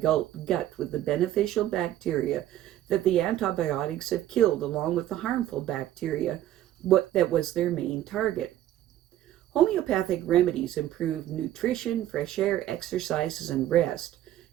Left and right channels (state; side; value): quieter; left; 12.9 dB